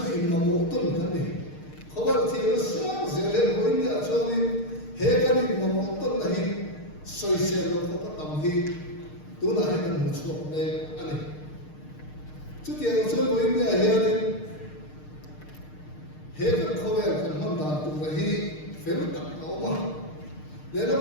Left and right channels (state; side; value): late; right; 6.6 ms